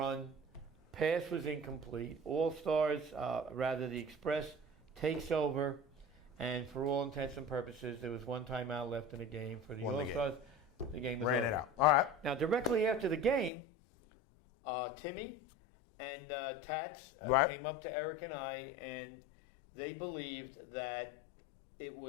Pass was incomplete. All-Stars, the Express, takes over. And for all intents and purposes, there was one timeout left in the game. For the All-Stars, the game was over. It out. All right. Now, directly after the game, Timmy and Tats came up to Eric and I, and they believed that it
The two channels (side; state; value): right; drops out; at 13.5 s